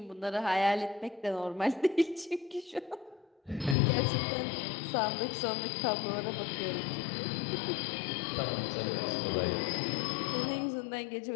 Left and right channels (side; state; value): right; drops out; at 3.8 s